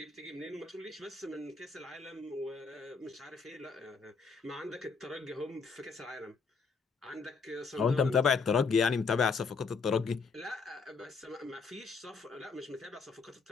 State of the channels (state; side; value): quieter; right; 4.9 dB